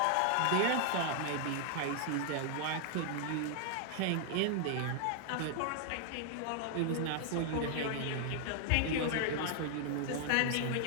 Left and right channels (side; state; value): both; different; correlation 0.00